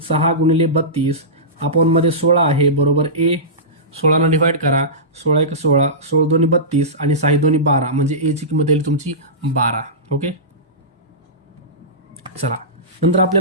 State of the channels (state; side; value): normal; both; correlation -0.19